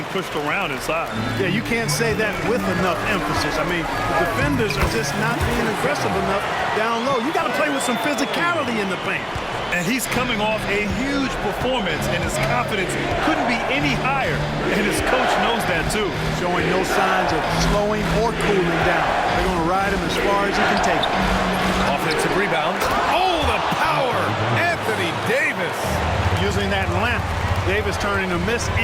pushed around inside. Yeah, you can't say that with enough emphasis. I mean, the defenders are just not being aggressive enough down low. You got to play with some physicality in the paint. And he's coming off a huge performance, and his confidence couldn't be any higher. And his coach knows that, too. Showing no signs of slowing or cooling down. They're going to ride him as far as he can take him. Offensive rebound. Oh, the power! Anthony Davis. Using that length, Davis turning a miss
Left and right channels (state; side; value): identical; both; correlation 1.00